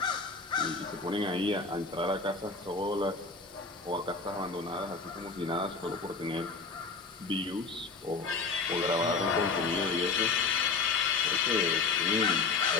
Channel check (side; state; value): right; quieter; 4.4 dB